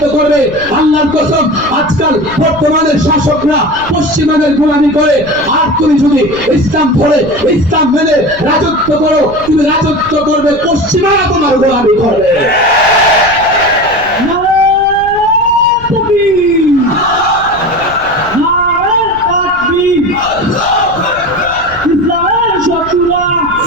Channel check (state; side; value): noise; left; rumble, 18 dB below the sound